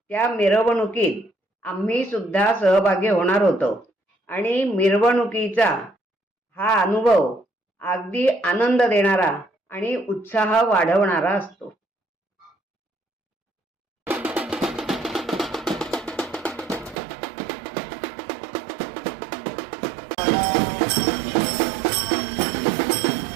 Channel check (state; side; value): drops out; left; at 16.9 s